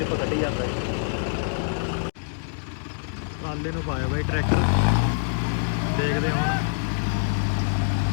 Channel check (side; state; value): right; silent; digital silence